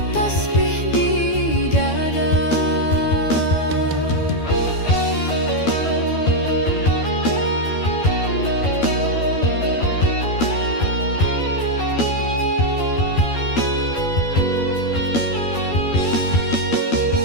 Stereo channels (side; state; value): right; late; 12 ms